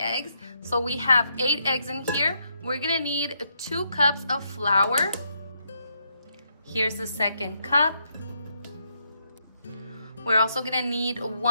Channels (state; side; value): inverted; both; correlation -0.78